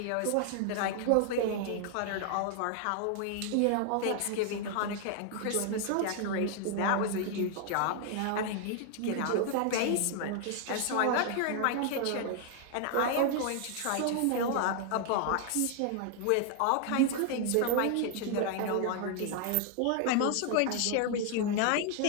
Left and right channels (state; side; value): different; both; correlation 0.00